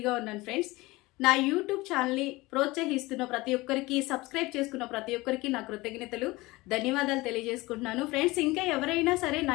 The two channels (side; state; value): right; quieter; 21.2 dB